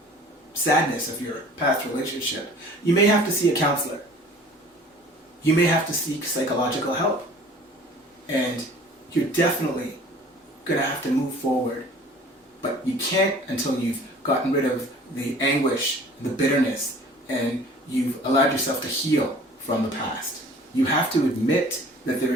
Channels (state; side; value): normal; both; correlation 0.48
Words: sadness of your past relationship. You may have to see a counselor. You may have to seek psychological help. And you're definitely going to have to move forward. But you can't until you've gotten rid of the anguish, the bitterness, and you've allowed yourself to heal from the past. You have to admit that there